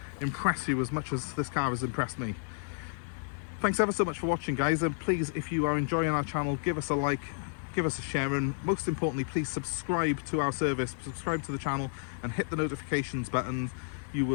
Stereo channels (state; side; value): silent; right; digital silence